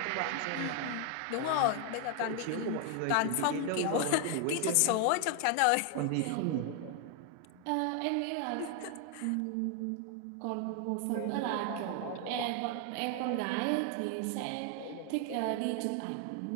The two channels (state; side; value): different; both; correlation 0.00